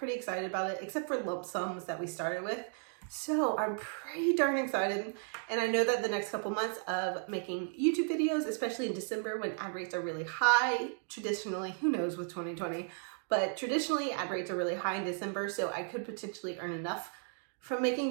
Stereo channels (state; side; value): silent; left; 55 dB below the other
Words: excited about it, except for lump sums that we started with. So I'm pretty darn excited, and I know that the next couple months of making YouTube videos, especially in December when ad rates are really high, traditionally, who knows with 2020, but traditionally ad rates are really high in December, so I could potentially earn enough from